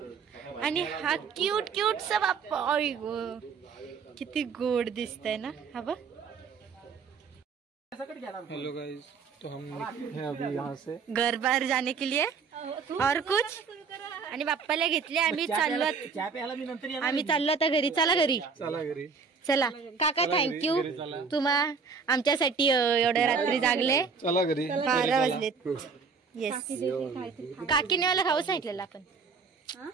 आणि हा क्यूटचा बाप्पा आई ग किती गोड दिसतंय ना हा बघ। हेलो गाइस, तो हम हैं अभी यहाँ से घर बाहर जाने के लिए और कुछ आणि बाप्पाला घेतले. आम्ही चाललो आता घरी. चला घरी. चला काका, थँक्यू तुम्हा आमच्यासाठी एवढ्या रात्री जागले. चला घरी. 12 वाजलेत. येस, काकीने मला खाऊ सांगितलेलं आपण.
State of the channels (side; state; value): left; quieter; 5.4 dB